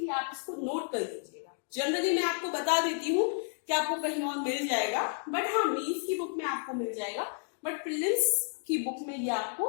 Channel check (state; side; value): silent; right; 57 dB below the other